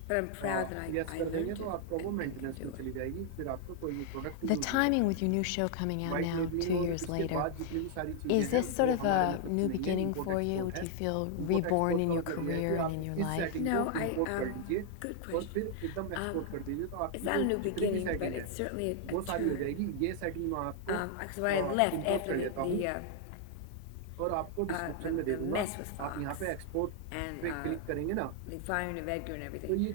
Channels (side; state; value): both; different; correlation 0.00